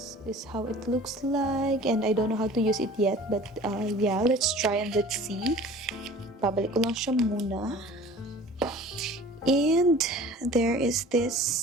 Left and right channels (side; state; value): both; normal; correlation 0.44